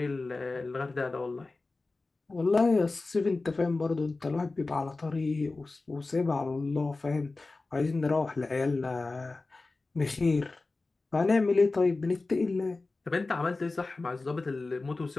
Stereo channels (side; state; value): right; quieter; 3.5 dB